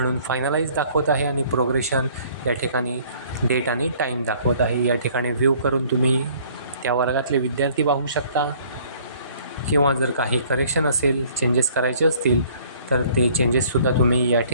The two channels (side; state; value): both; inverted; correlation -0.57